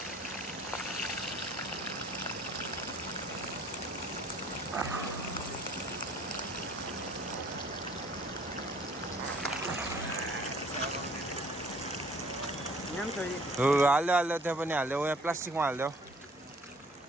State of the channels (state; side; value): normal; both; correlation 0.56